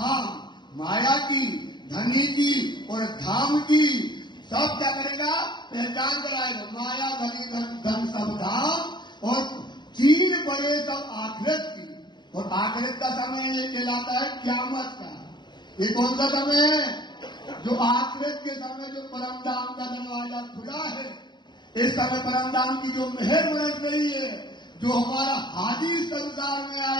माया की, धनी की और धाम की सब क्या करेगा, पहचान कराएगा। माया, धनी, धन सब धाम, और 3 बड़े सब आखिरत की। और आखिरत का समय ये कहलाता है क़यामत का। ये कौन सा समय है, जो आखिरत के समय जो परम धाम का दरवाजा खुला है, इस समय परम धाम की जो मेहर बरस रही है, जो हमारा हाजी संसार में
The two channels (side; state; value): right; late; 0.22 ms